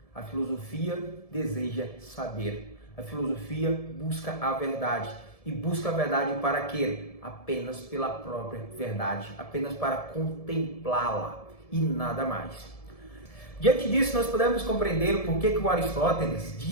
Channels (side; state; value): right; late; 1.7 ms